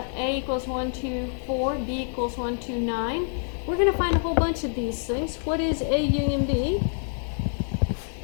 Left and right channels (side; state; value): right; silent; 57 dB below the other